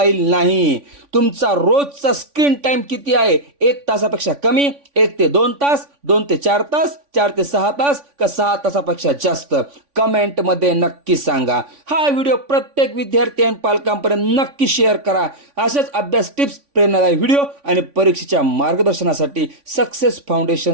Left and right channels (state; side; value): late; left; 3.5 ms